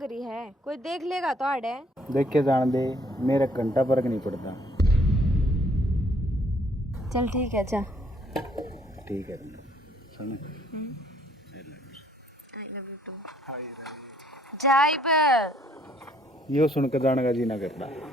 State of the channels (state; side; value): normal; both; correlation 0.64